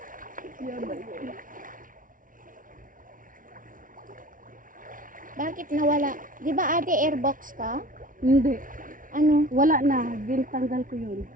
Bakit nawala? Di ba ate airbox ka? Hindi. Ano? Wala na. Tanggal ko yun.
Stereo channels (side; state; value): left; late; 0.39 ms